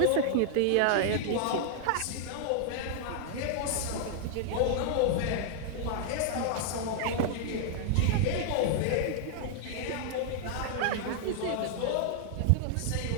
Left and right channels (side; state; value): both; different; correlation 0.00